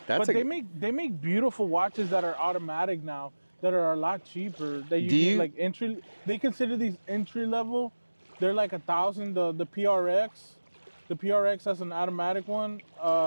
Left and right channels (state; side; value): inverted; both; correlation -1.00